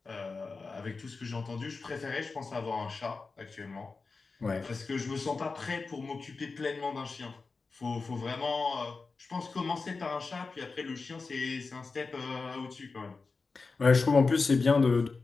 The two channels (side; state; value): right; quieter; 4.2 dB